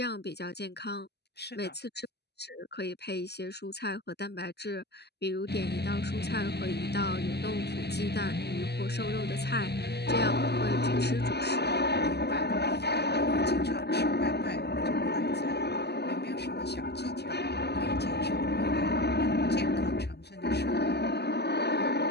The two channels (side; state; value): right; late; 0.48 ms